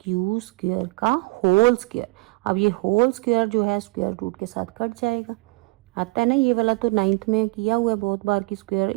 square का होल स्क्वायर। अब ये होल स्क्वायर जो है स्क्वायर रूट के साथ कट जाएगा, आता है ना ये वाला, तो 9th में किया हुआ है बहुत बार की स्क्वायर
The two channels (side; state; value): left; quieter; 25.2 dB